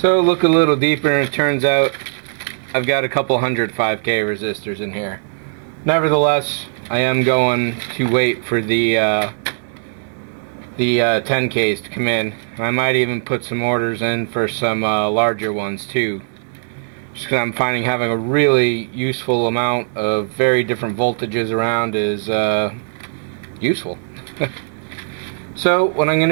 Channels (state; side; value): silent; left; digital silence